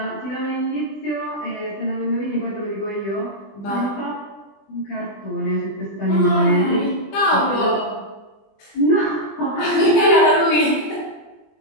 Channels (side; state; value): right; late; 20 ms